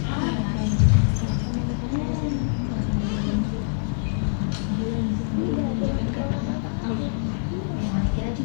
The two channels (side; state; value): right; silent; digital silence